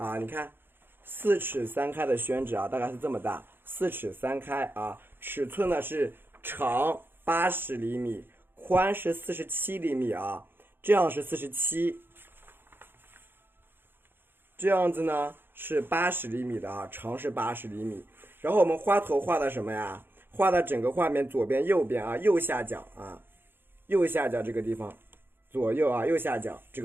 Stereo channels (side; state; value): left; late; 0.10 ms